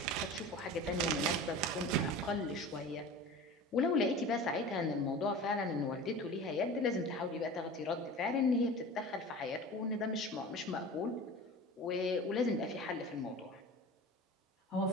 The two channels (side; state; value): both; normal; correlation 0.36